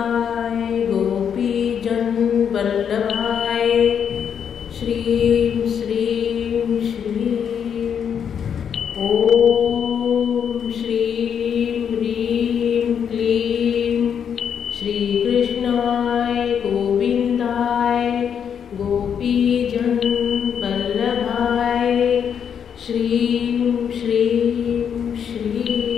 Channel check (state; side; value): quieter; right; 7.8 dB